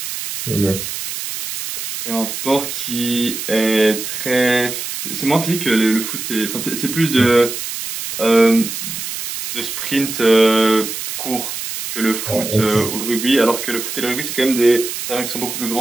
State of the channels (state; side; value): noise; right; hiss, 6 dB below the sound